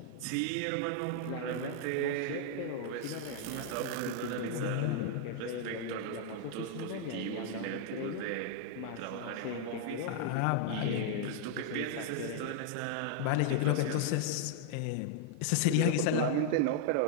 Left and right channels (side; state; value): both; different; correlation 0.00